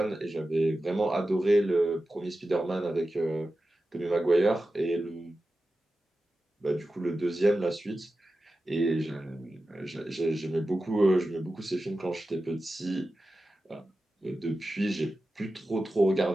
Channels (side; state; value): both; normal; correlation 0.93